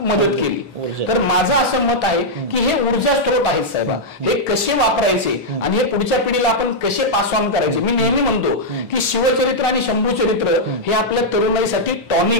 मदत केली. तर माझं असं मत आहे की हे ऊर्जा स्त्रोत आहेत साहेबा, हे कसे वापरायचे आणि हे पुढच्या पिढीला आपण कसे पास ऑन करायचे. मी नेहमी म्हणतो की शिवचरित्र आणि शंभू चरित्र हे आपल्या तरुणाईसाठी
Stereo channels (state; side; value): normal; both; correlation -0.05